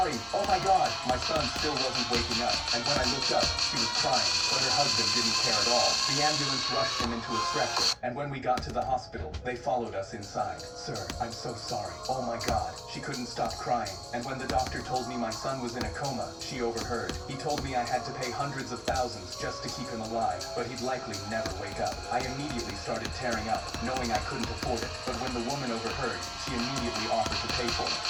oh my God." My son still wasn't waking up, and when I looked up, she she was crying, but her husband didn't care at all. The ambulance rushed him into a stretcher, and when we got to the hospital, they followed us inside. Sir, I'm so sorry. Oh my God. She couldn't stop crying, and when the doctor told me my son was in a coma, she overheard. He told me I had to pay hundreds of thousands just to keep him alive, but he'd likely never wake up. I immediately started tearing up, knowing I couldn't afford it, but when the woman overheard, she immediately offered to pay for it.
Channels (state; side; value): identical; both; correlation 1.00